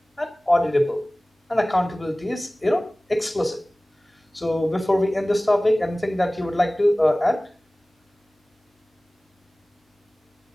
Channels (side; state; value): both; normal; correlation 0.98